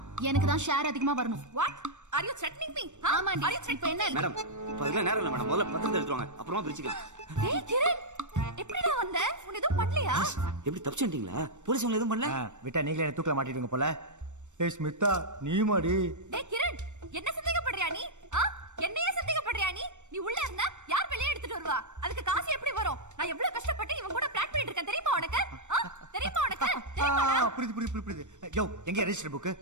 எனக்கு தான் ஷேர் அதிகமா வரணும். What are you threatening me? ஆமாண்டி. இப்போ என்ன மேடம், இப்ப அதெல்லாம் நேரம் இல்ல மேடம். முதல்ல பத்திரத்தை எடுத்துட்டு வாங்க, அப்புறமா பிரிச்சுக்கலாம். ஏய் கிரண், எப்படிடா வந்த? உன்னை எதுவும் பண்ணலையா? எப்படி தப்பிச்சிட்டீங்களா? போலீஸ் உங்களை எதுவும் பண்ணல? விட்டா நீங்களே என்ன தூக்கல மாட்டிடுங்க போல. ஏய் ஸ்மிதா, நீ மாடி. டேய் கிரண், என்ன சந்தேகப்படுறியா நீ? என்னையே சந்தேகப்படுறியா நீ? நீ உள்ள இருந்தா யார் வெளியே எடுத்துட்டு வருவா? அதுக்கு காசு எப்படி வரும்? நான் எவ்வளவு கஷ்டப்பட்டு இவன் கூட பிளான் பண்ணிட்டு இருக்கேன் தெரியுமா உனக்கு? தெரியுமா உனக்கு? புரியுது. யோ, எங்க ரெஜிஸ்டர் புக்?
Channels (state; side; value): late; left; 0.84 ms